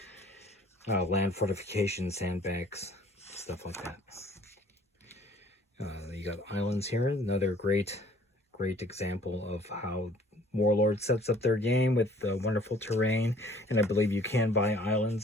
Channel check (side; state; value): both; normal; correlation 0.54